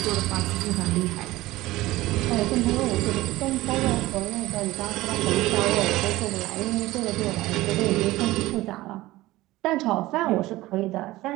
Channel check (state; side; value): quieter; left; 17.9 dB